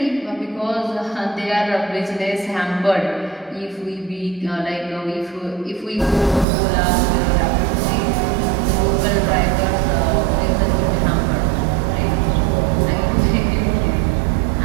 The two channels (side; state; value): left; drops out; at 6.5 s